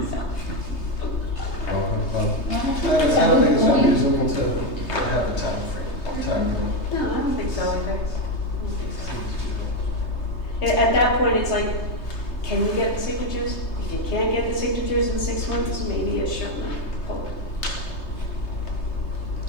I don't think it's unreasonable to have a time frame. No, I don't think so. At that point, it's like, can you get the signatures? If you can't get the signatures in 6 months, maybe a short poll.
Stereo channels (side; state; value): right; late; 3.3 ms